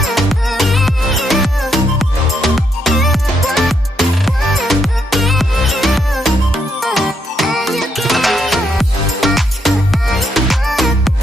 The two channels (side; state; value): both; normal; correlation 0.77